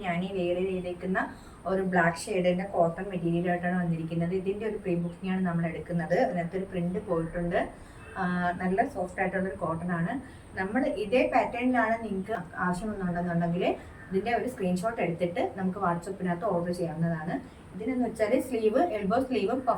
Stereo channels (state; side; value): identical; both; correlation 1.00